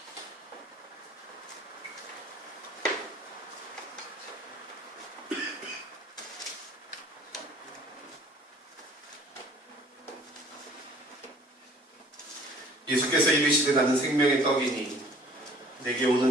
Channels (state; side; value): normal; both; correlation 0.53